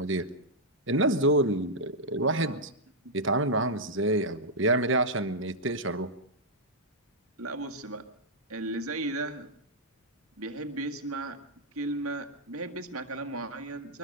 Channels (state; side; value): normal; both; correlation -0.07